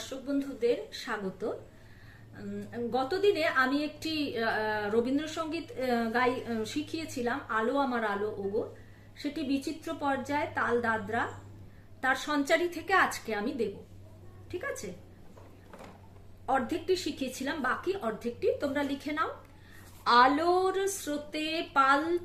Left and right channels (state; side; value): identical; both; correlation 1.00